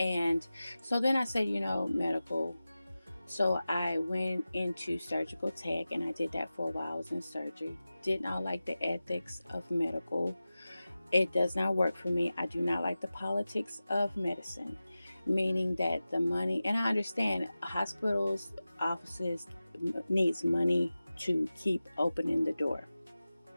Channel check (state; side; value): inverted; both; correlation -0.95